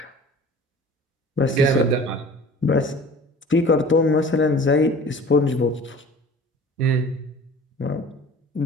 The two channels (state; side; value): normal; both; correlation 0.44